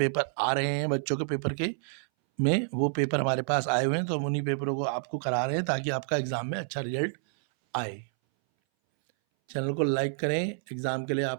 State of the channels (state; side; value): silent; left; 59 dB below the other